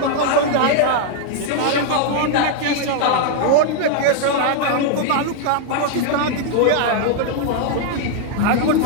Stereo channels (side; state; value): both; different; correlation 0.00